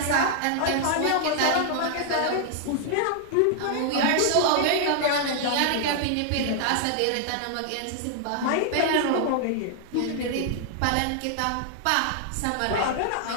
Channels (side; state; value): both; different; correlation 0.00